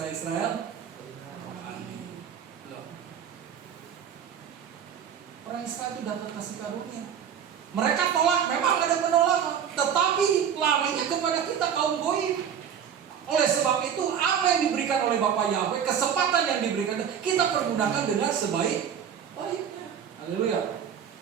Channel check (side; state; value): left; quieter; 8.3 dB